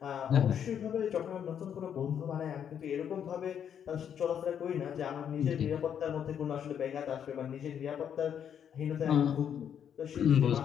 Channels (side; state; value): right; quieter; 8.6 dB